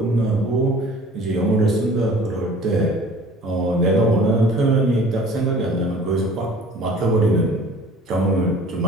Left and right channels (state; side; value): normal; both; correlation 0.48